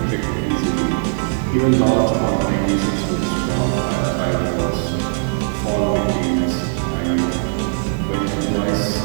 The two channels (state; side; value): silent; left; 57 dB below the other